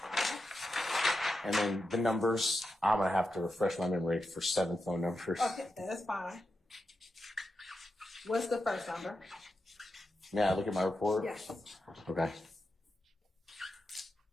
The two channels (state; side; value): normal; both; correlation 0.88